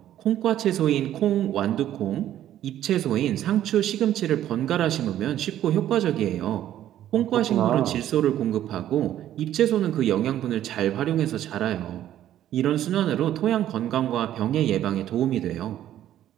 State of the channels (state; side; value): quieter; left; 12.0 dB